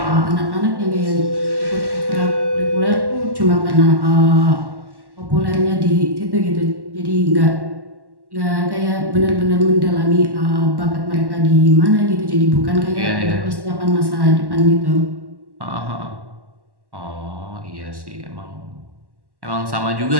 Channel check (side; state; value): left; late; 1.1 ms